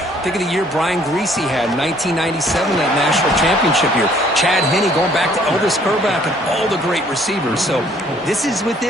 think of the year Brian Greasy had, 1997, that national championship year. Chad Henne going back to Elvis Kerback and all the great receivers. So this is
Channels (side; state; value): both; normal; correlation 0.60